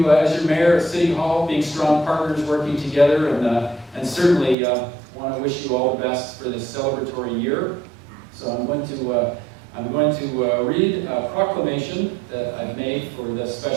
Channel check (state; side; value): drops out; left; at 4.5 s